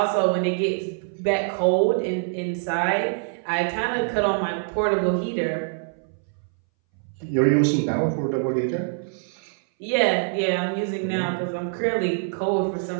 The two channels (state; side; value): silent; left; 61 dB below the other